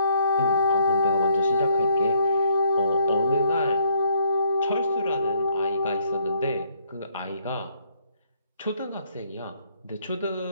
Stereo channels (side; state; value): both; inverted; correlation -0.68